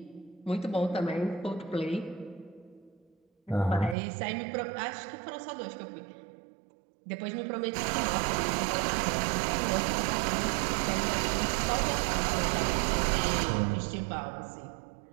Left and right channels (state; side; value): drops out; left; at 4.0 s